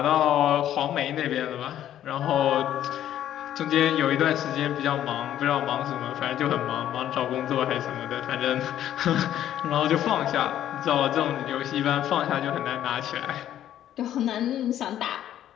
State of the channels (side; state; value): right; quieter; 11.5 dB